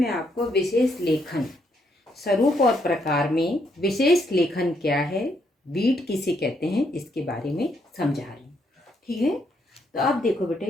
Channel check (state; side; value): normal; both; correlation 0.74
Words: आपको विशेष लेखन स्वरूप और प्रकार में विशेष लेखन क्या है, बीट किसे कहते हैं, इसके बारे में समझा रही हूँ। ठीक है, तो अब देखो